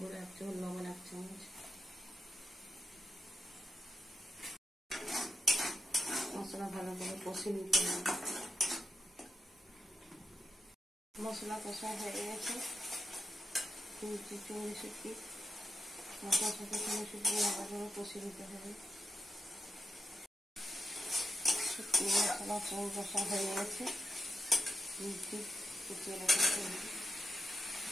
গুঁড়ো 1 চামচ, লবণ 1 চামচ। মশলা ভালো করে কষে নিতে হবে। মশলা কষা হয়ে গেছে, চিংড়ি শুটকি মশলার সাথে চিংড়ি শুটকি ভালো করে কষে নিতে হবে। শুটকি মশলা চিংড়ি কষা হয়ে গেছে, কুচিয়ে রাখা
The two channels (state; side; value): normal; both; correlation 0.86